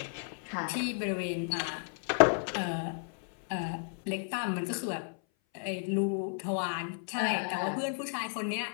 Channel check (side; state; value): right; silent; 56 dB below the other